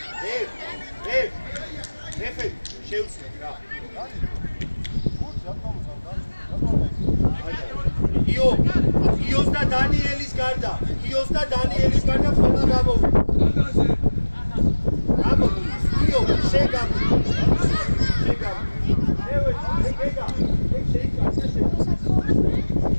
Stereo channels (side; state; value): both; inverted; correlation -1.00